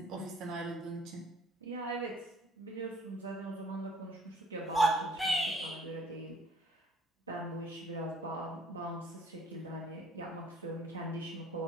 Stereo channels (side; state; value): both; normal; correlation 0.57